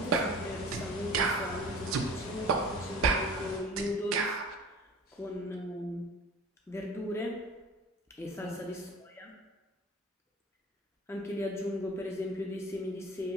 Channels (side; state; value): both; normal; correlation 0.40